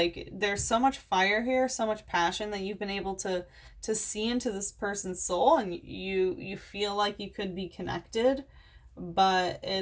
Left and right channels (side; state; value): both; identical; correlation 1.00